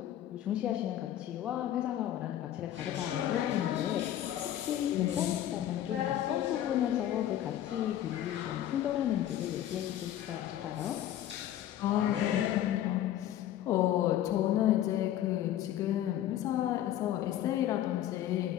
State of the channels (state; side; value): quieter; right; 12.0 dB